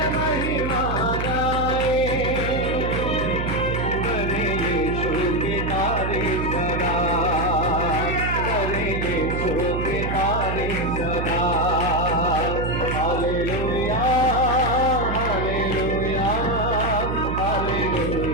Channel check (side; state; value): right; noise; hum, 3 dB below the sound